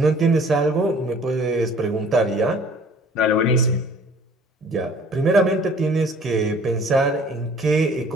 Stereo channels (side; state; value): both; normal; correlation 0.52